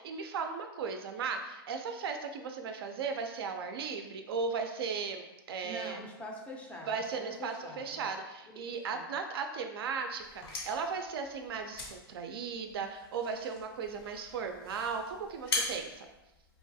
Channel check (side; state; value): left; quieter; 3.8 dB